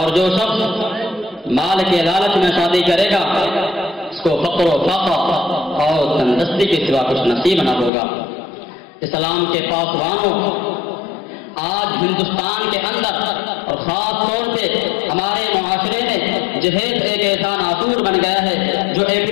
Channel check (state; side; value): drops out; right; at 7.9 s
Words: جو شخص مال کے لالچ میں شادی کرے گا اس کو فقر و فاقہ اور تندرستی کے سوا کچھ نصیب نہ ہوگا۔ اسلام کے پاسبانوں، آج ہندوستان کے اندر اور خاص طور سے ہمارے معاشرے میں جہیز ایک ایسا ناصور بن گیا ہے جو